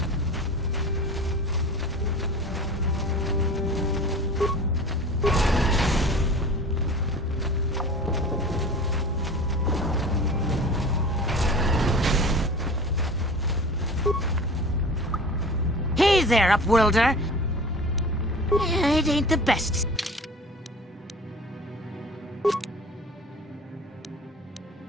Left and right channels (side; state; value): both; normal; correlation 0.38